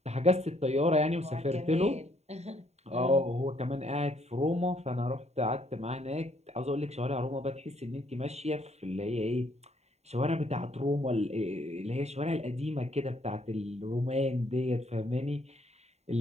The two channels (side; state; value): left; late; 0.32 ms